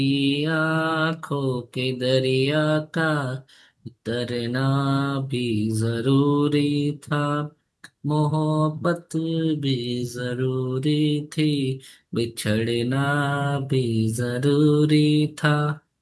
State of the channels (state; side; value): identical; both; correlation 1.00